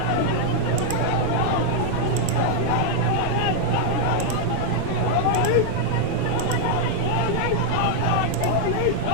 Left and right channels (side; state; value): both; different; correlation -0.01